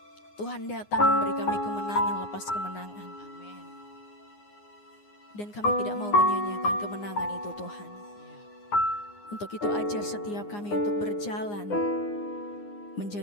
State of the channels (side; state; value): right; late; 9.7 ms